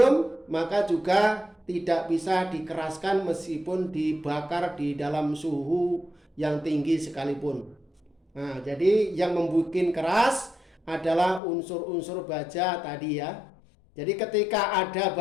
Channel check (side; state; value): right; drops out; at 11.4 s